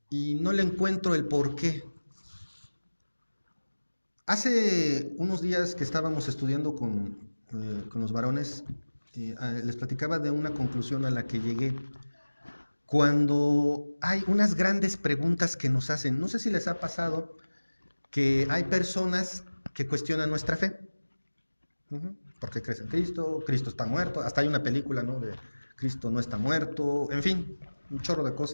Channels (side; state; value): both; inverted; correlation -1.00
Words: y no le encuentro el porqué. Hace unos días que estábamos estudiando con los varones, les platicaba de una conclusión a la que llegué. Cuando hay unas grandes preguntas que nos hacen, no sé si les ha pasado que hay personas que cuestionan nuestra fe. ¿Por qué crees en Cristo? Cristo está muerto. Hasta hay una película, ¿no? De Cristo no está muerto. En fin, un chorro de